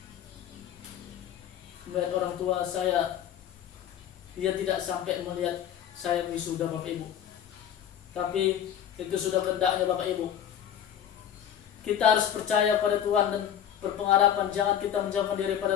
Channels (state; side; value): quieter; right; 9.8 dB